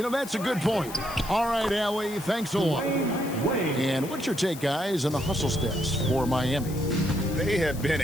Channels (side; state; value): left; noise; hiss, 15 dB below the sound